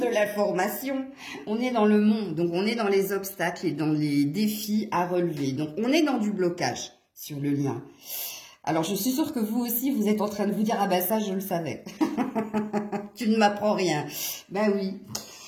l'information. On est dans le monde, donc on est dans les obstacles et dans les défis à relever. Donc, on est dans du blocage sur le lien. Alors, je suis sûre que vous aussi, vous êtes en train de vous dire, ah ben ça, je le savais. Tu ne m'apprends rien. Ben oui.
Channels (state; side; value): identical; both; correlation 1.00